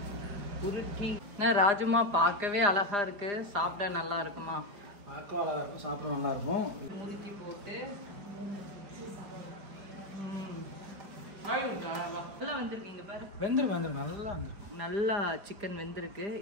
உருட்டி. ராஜுமா பார்க்கவே அழகா இருக்கு, சாப்பிட நல்லா இருக்குமா? பார்க்க அழகா இருக்கும், சாப்பிட நல்லா இருக்கும். முறுக்கி போட்டு நல்லா வந்திருக்கீங்க பாரு. வெந்திருக்கு நல்லா நல்லா சிக்கன் வெந்திருக்கு.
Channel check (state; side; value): late; left; 4.9 ms